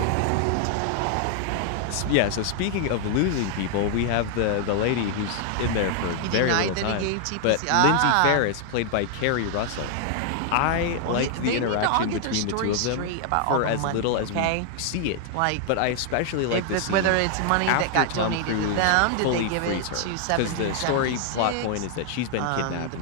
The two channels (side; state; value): both; different; correlation 0.00